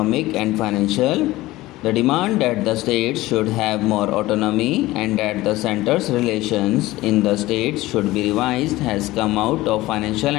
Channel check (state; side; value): quieter; right; 18.0 dB